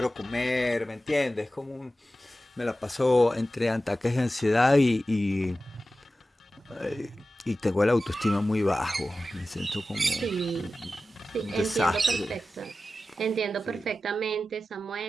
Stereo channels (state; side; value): normal; both; correlation 0.94